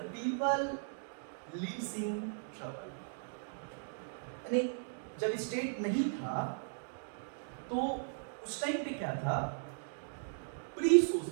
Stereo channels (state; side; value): silent; left; digital silence